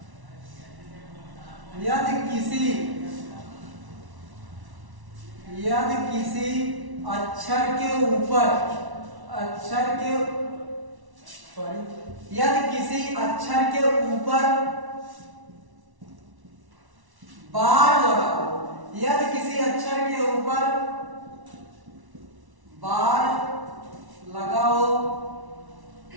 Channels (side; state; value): left; late; 1.1 ms